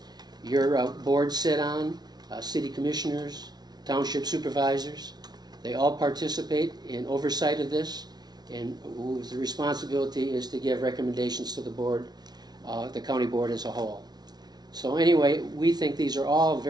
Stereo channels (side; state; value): left; late; 0.19 ms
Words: your board sit on, city commissioners, township supervisors. They all participate in oversight of this, and the responsibility is to give recommendations to the board, the county board as a whole. So anyway, we think these are all